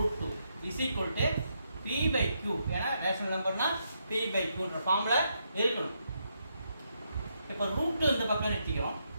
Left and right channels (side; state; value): both; inverted; correlation -0.79